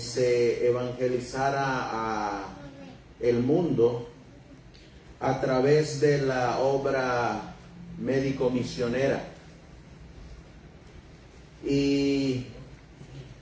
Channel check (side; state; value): both; identical; correlation 1.00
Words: evangelizara a el mundo a través de la obra médico-misionera. Y